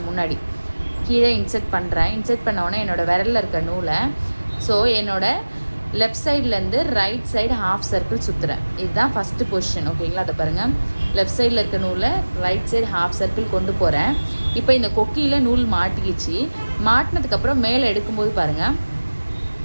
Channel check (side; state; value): both; inverted; correlation -1.00